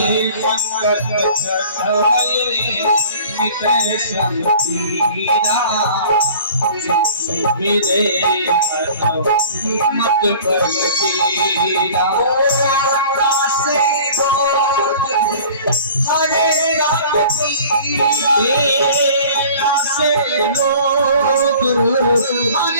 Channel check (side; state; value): both; inverted; correlation -0.47